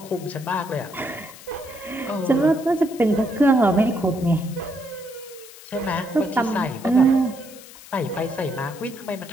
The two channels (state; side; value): noise; left; hiss, 18 dB below the sound